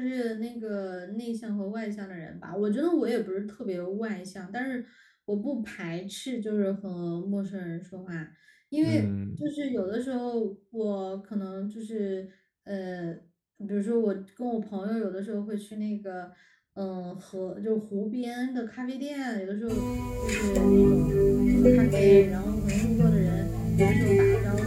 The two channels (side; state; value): both; identical; correlation 1.00